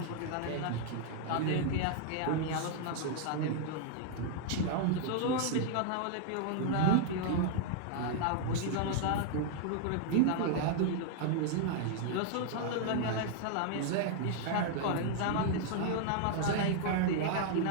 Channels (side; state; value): both; different; correlation 0.00